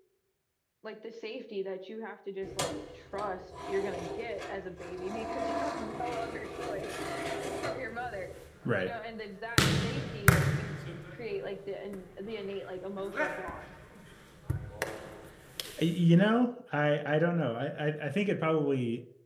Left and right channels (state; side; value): identical; both; correlation 1.00